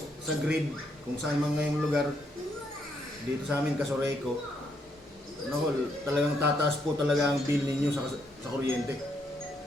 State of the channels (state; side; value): normal; both; correlation 0.75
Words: grid, kung saan man ngayong lugar, dito sa amin Casoreco, talagang tataas po talaga ang bill ninyo sa kuryente.